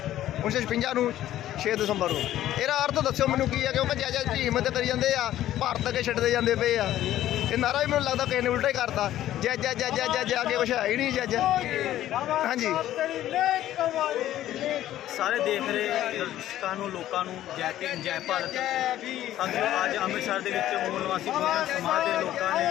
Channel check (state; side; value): quieter; right; 13.1 dB